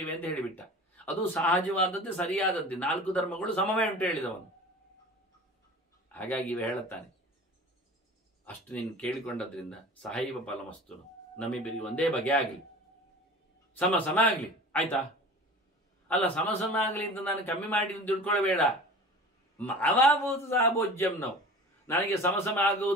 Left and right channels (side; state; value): both; normal; correlation 0.39